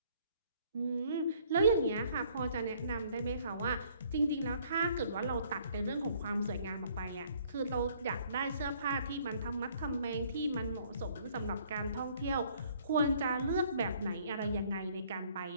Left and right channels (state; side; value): inverted; both; correlation -0.61